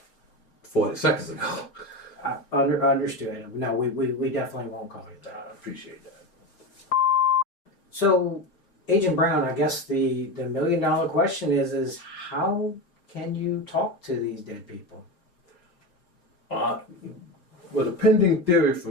40 seconds ago. I understood. No, we definitely won't call you that. I appreciate that. So, Agent Brown, I guess the $1 million question is how can you talk to these dead people? Well, the pending theory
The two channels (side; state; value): right; late; 5.3 ms